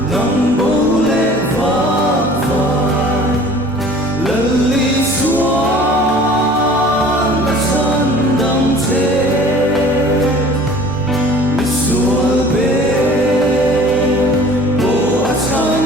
nắng bố lệ vác vai lần ly xuân đã chân đắm thế mi xuân bên bố đã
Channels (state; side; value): normal; both; correlation 0.47